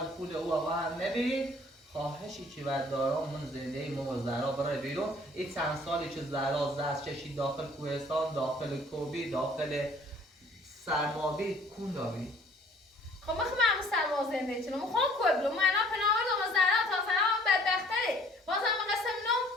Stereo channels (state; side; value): normal; both; correlation 0.55